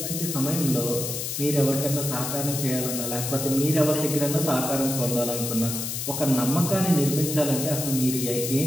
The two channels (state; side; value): noise; left; hiss, 4 dB below the sound